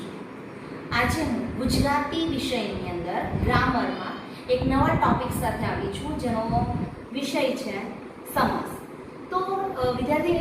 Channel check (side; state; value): both; identical; correlation 1.00